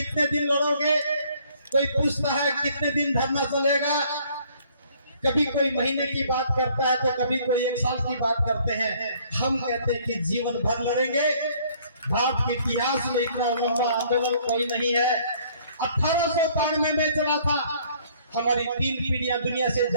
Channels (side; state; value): both; inverted; correlation -0.60